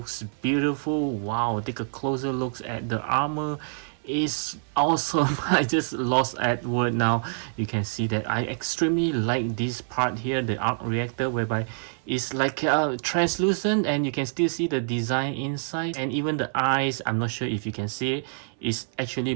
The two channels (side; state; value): left; silent; 58 dB below the other